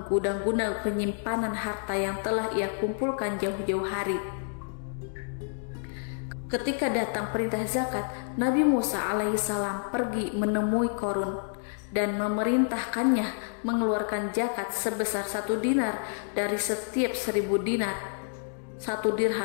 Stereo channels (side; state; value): right; silent; digital silence